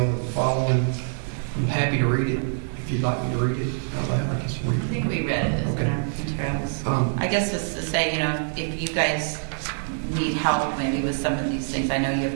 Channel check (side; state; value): left; silent; digital silence